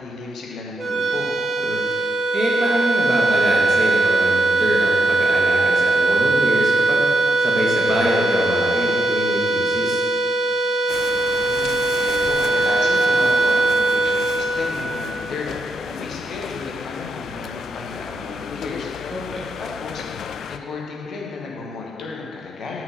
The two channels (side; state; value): both; normal; correlation 0.81